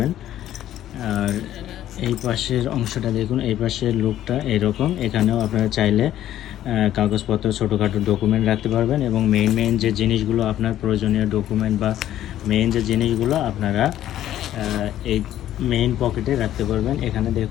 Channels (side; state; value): right; quieter; 12.3 dB